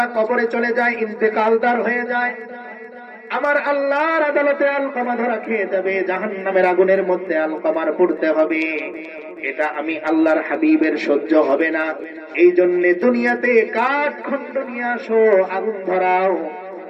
কবরে চলে যায়, ইন্তেকালদার হয়ে যায়, আমার আল্লাহর আদালতে আলকামা ধরা খেয়ে যাবে, জাহান্নামের আগুনের মধ্যে আলকামার পড়তে হবে। এটা আমি আল্লাহর হাবিবের সহ্য হবে না। এই জন্য দুনিয়াতে কাঠ খণ্ড নিয়ে আসো, আগুন ধরাও,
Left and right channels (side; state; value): both; identical; correlation 1.00